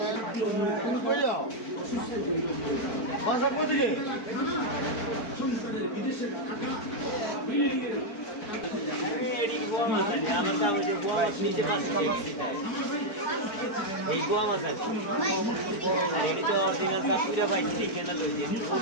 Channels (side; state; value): right; late; 4.5 ms